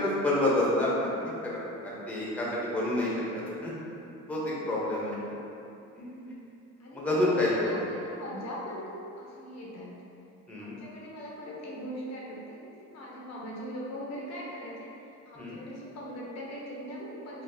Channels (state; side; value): normal; both; correlation 0.37